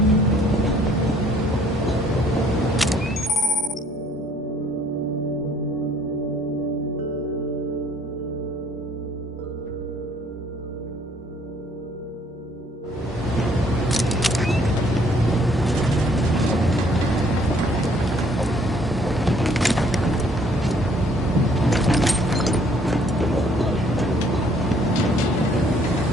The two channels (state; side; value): normal; both; correlation 0.62